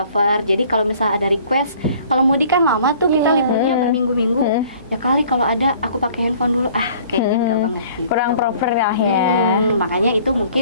Jadi kalau misalnya ada request, kalau mudik kan lama tuh kita liburnya berminggu-minggu, ya kali kalau ada aku pakai handphone dulu, kayaknya enggak banget gitu. Kurang proper lah ya. Makanya itu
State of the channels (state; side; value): inverted; both; correlation -0.54